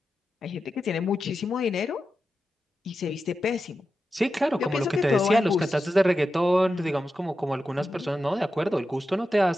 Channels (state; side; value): normal; both; correlation 0.90